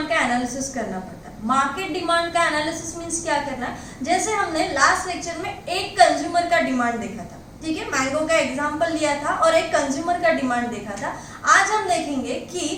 का एनालिसिस करना पड़ता है। मार्केट डिमांड का एनालिसिस मींस क्या करना है? जैसे हमने लास्ट लेक्चर में एक कंज्यूमर का डिमांड देखा था, ठीक है, मैंगो का एग्जांपल लिया था और एक कंज्यूमर का डिमांड देखा था। आज हम देखेंगे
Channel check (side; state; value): both; identical; correlation 1.00